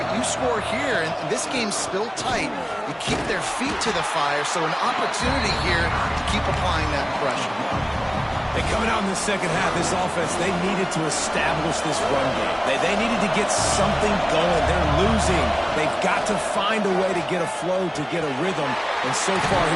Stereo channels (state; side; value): identical; both; correlation 1.00